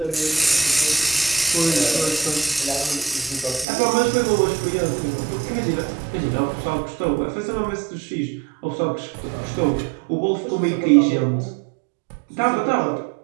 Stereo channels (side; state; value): left; drops out; at 3.7 s